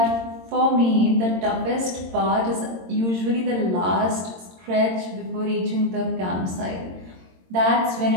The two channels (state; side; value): late; left; 22 ms